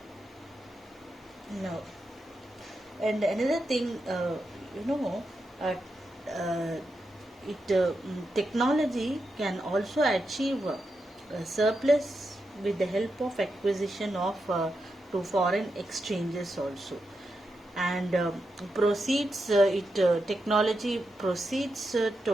now, and another thing, you know uh, uh, technology can also achieve a surplus with the help of acquisition of to foreign exchanges also, and proceeds it technology proceeds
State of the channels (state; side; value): normal; both; correlation 0.87